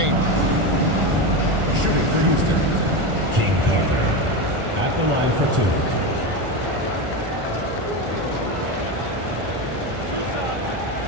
Shooting for Houston, King Carter at the line for 2.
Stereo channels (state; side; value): late; left; 1.4 ms